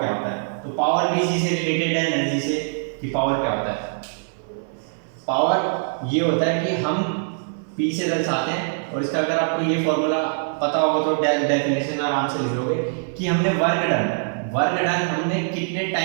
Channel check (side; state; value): left; silent; 63 dB below the other